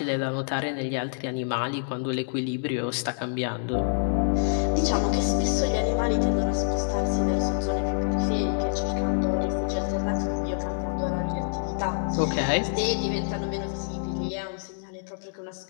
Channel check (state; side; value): silent; right; digital silence